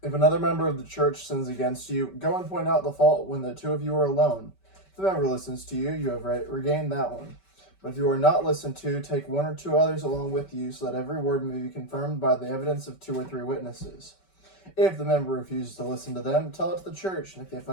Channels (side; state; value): right; late; 5.2 ms